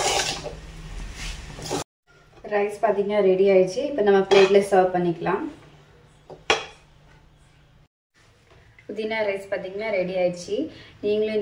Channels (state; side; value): identical; both; correlation 1.00